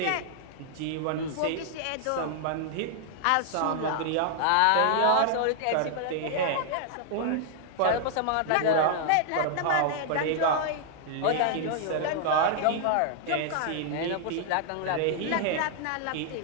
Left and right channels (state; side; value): different; both; correlation -0.01